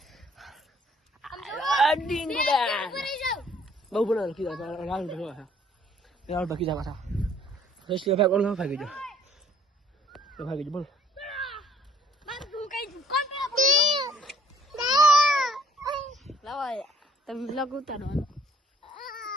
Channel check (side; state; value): both; normal; correlation 0.60